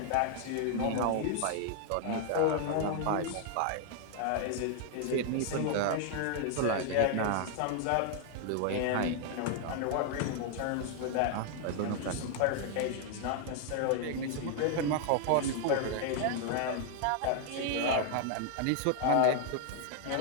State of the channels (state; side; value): different; both; correlation 0.00